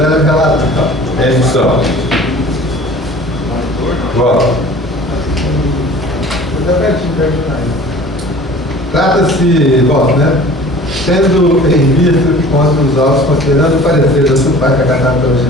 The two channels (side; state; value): both; normal; correlation 0.45